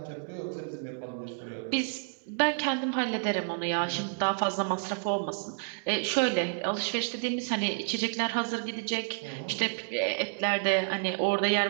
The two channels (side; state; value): left; silent; digital silence